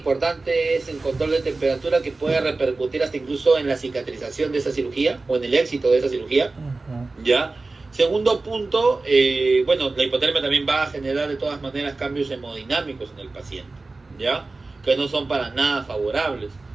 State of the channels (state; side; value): quieter; left; 3.5 dB